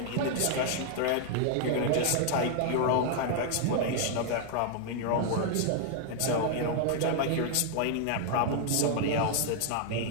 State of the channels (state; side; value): different; both; correlation 0.00